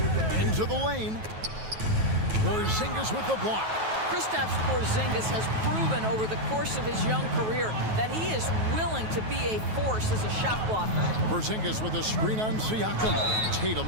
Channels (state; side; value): late; left; 9.3 ms